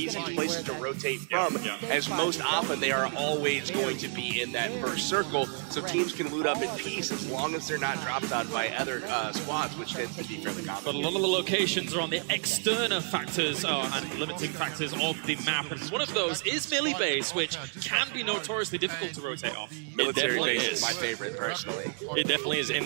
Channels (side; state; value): left; silent; 58 dB below the other